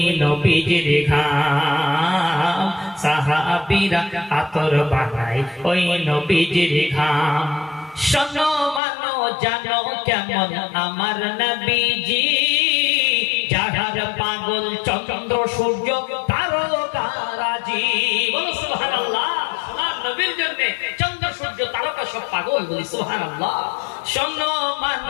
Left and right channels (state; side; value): drops out; right; at 8.8 s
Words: নবীজির ঘাম। সাহাবীরা আতর বানায় ওই নবীজির ঘাম। শোনো মানো জানো কেমন আমার নবীজি, যাহার পাগল চন্দ্র সূর্য তারকারাজি। বলো সুবহানাল্লাহ। সোনার নবীর জন্য চন্দ্র সূর্য তারকা সব পাগল। বলি সুবহানাল্লাহ। শোনো